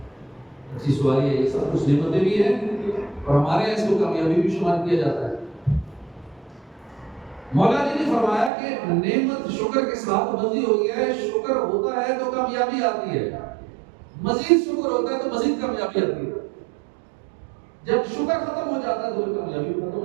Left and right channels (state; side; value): drops out; left; at 8.5 s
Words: اچھی سواری ہے، یہ سب کچھ نعمتیں بھی ہیں، اور ہمارے یہاں اس کو کامیابی بھی شمار کیا جاتا ہے۔ مولا جی نے فرمایا کہ نعمت شکر کے ساتھ بندھی ہوئی ہے، شکر ہوتا ہے تو کامیابی آتی ہے، مزید شکر ہوتا ہے تو مزید کامیابی آتی ہے۔ جب شکر ختم ہو جاتا ہے تو کامیابی ختم